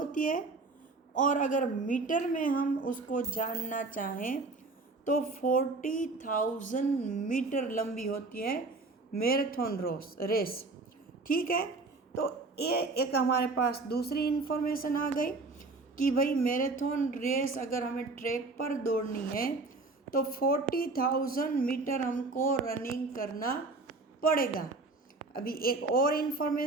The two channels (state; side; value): quieter; left; 3.6 dB